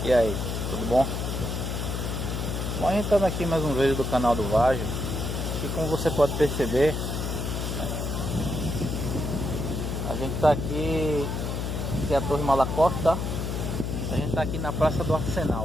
E aí, tudo bom? Bom, a gente tá aqui mais um vídeo do canal do Vágio. E como você pode perceber, né, a gente tá aqui, que é a Torre Malakoff, tá? A gente tá aqui na Praça do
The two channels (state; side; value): noise; left; hum, 2 dB below the sound